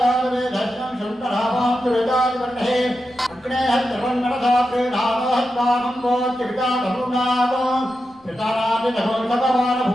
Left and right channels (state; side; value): noise; left; rumble, 30 dB below the sound